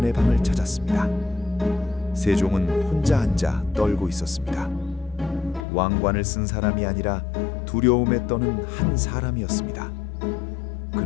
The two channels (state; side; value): drops out; right; at 5.7 s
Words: 방을 찾았습니다. 세종은 혼자 앉아 떨고 있었습니다. 왕관을 쓴 사람이 아니라 두려움에 떠는 한 사람이었습니다.